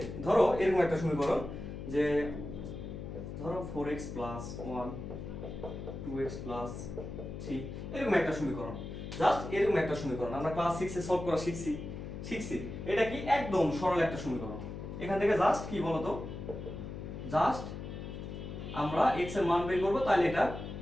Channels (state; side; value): noise; left; hum, 8 dB below the sound